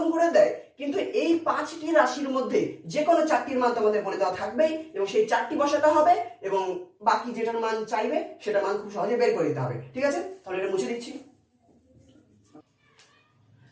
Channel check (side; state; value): both; identical; correlation 1.00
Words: করে দেয়, কিন্তু এই 5টি রাশির মধ্যে যে কোনো 4টির মান তোমাদের বলে দেওয়া থাকবেই এবং সেই 4টি বসাতে হবে এবং বাকি যেটার মান চাইবে সেটার মান খুব সহজে বের করে দিতে হবে। ঠিক আছে, তাহলে এটা মুছে দিচ্ছি।